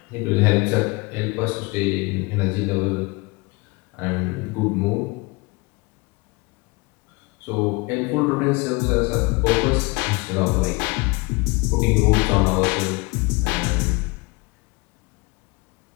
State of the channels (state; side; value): quieter; right; 26.1 dB